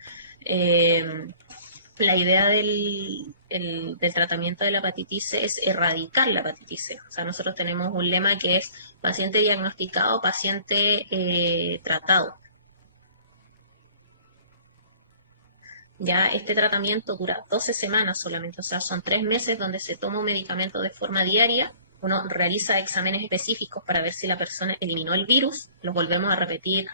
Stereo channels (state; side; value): inverted; both; correlation -0.51